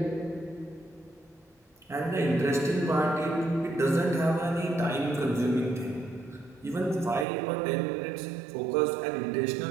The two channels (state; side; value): drops out; left; at 7.2 s